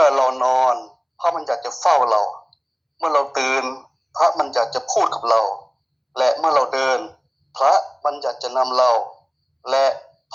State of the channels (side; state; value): both; identical; correlation 1.00